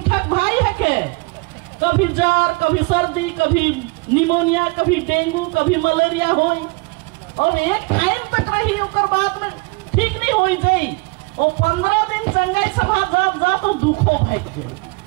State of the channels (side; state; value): left; quieter; 27.9 dB